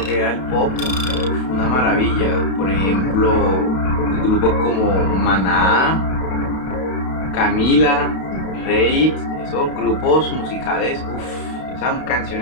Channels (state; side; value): late; right; 32 ms